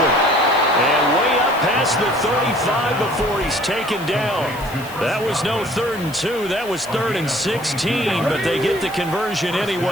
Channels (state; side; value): noise; left; hiss, 18 dB below the sound